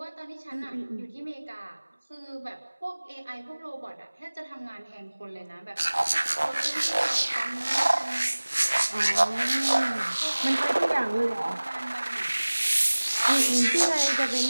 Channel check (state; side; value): inverted; both; correlation -1.00